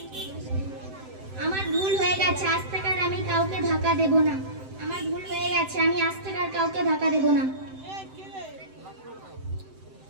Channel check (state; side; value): late; left; 7.8 ms